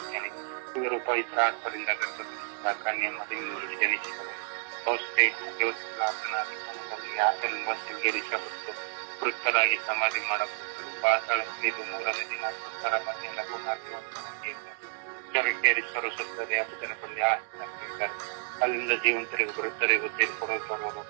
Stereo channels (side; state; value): left; silent; digital silence